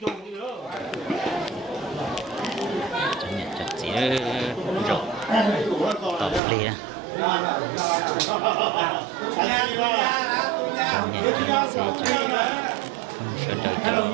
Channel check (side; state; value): left; drops out; at 6.4 s